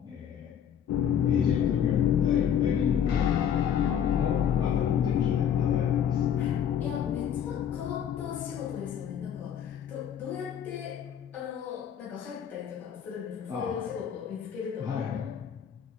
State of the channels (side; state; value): right; quieter; 8.8 dB